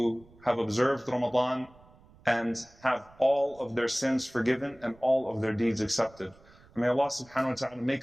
have observed Ramadan and have all of their sins forgiven and all of their deeds accepted. And may Allah subhanahu wa ta'ala make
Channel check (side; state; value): right; noise; rumble, 26 dB below the sound